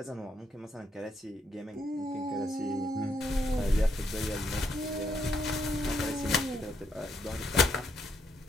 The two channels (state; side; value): normal; both; correlation 0.76